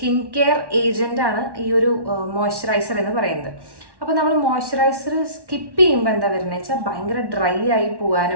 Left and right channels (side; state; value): left; late; 1.1 ms